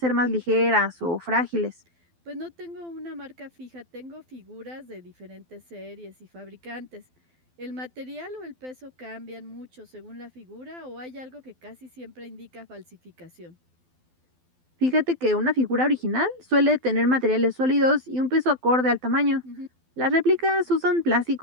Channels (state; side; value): late; left; 12 ms